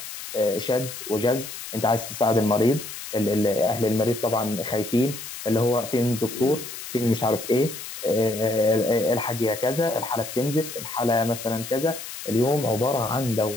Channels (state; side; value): noise; left; hiss, 10 dB below the sound